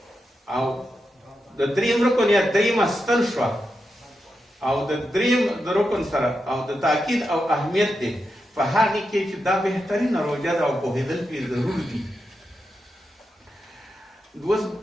او د 3م رکن یا 3مه ستن شوه او د 3م د رکن سره او د تاکید او اهمیت دی په هغې کې چې دا بهترینه روژه ده او پوهېدل پرې ضرور دي اوس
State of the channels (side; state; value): both; normal; correlation 0.87